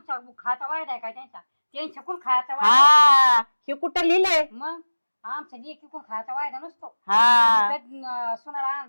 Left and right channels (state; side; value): inverted; both; correlation -1.00